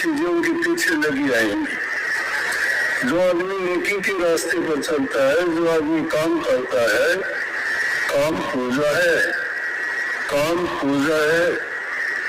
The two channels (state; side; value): identical; both; correlation 1.00